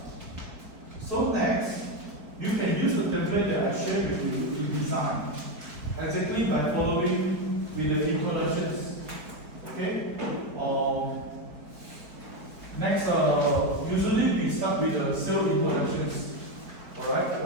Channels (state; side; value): late; left; 4.7 ms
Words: So next, you can use the template that I shared with you to design, exactly by following with the introductions. Okay? Next, usually we start with the self introductions. Alright,